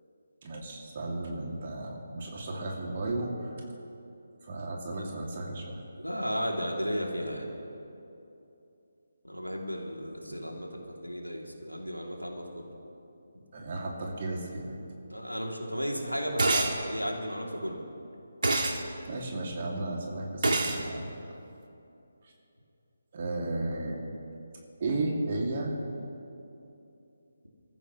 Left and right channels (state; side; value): inverted; both; correlation -0.87